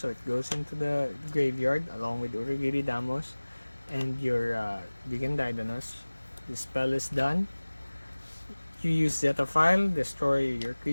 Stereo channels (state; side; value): inverted; both; correlation -1.00